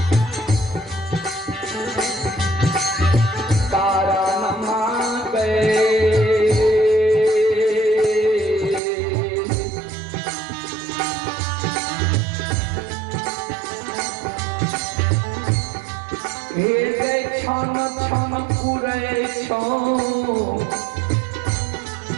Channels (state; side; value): drops out; left; at 8.8 s